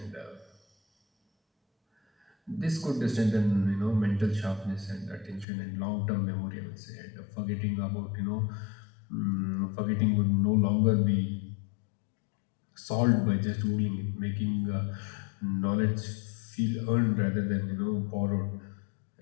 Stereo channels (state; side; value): drops out; right; at 5.5 s